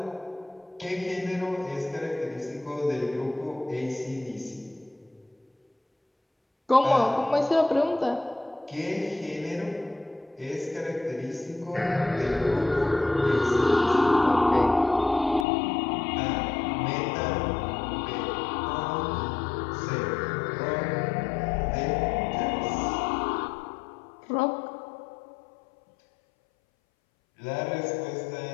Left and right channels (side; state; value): right; drops out; at 15.5 s